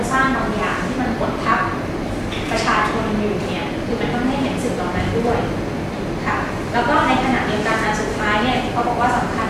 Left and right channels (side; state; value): both; identical; correlation 1.00